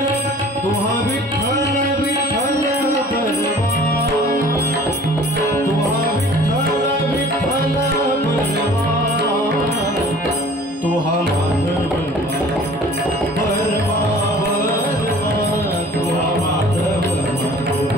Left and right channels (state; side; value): normal; both; correlation 0.48